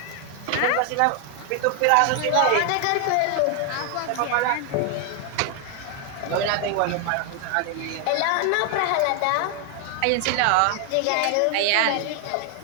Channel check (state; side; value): different; both; correlation 0.00